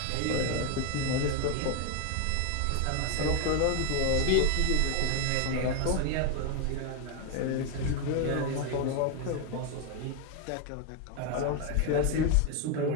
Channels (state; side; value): different; both; correlation 0.01